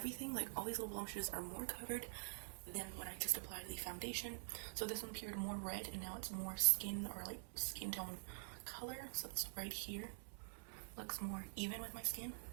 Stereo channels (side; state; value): left; silent; digital silence